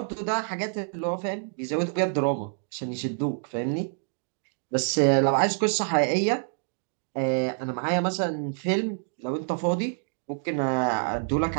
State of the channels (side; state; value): left; silent; digital silence